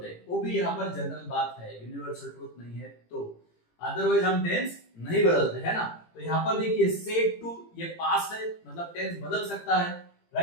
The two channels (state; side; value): late; right; 18 ms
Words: हैं, वो भी यहाँ पर जनरल बात है, यूनिवर्सल ट्रूथ नहीं है, तो अदरवाइज हम टेंस नहीं बदलते है ना। तो यहाँ पर देखिए सेड टू ये पास्ट है, मतलब टेंस बदल सकता है,